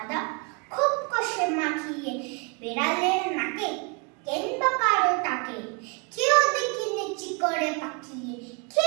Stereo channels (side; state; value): left; quieter; 32.6 dB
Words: খুব কষে মাখিয়ে বেড়ালের নাকে কিংবা কারো টাকে কেউ দেখি নেচি করে পাকিয়ে,